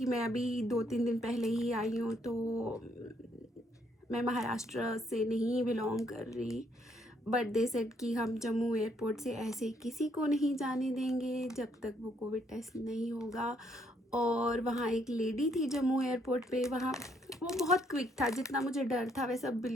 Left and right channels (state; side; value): normal; both; correlation 0.70